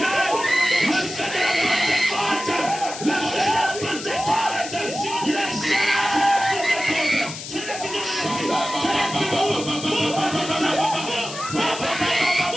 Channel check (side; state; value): left; noise; hiss, 10 dB below the sound